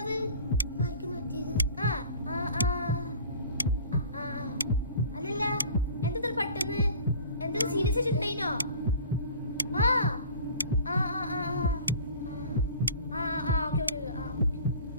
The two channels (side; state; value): both; inverted; correlation -0.43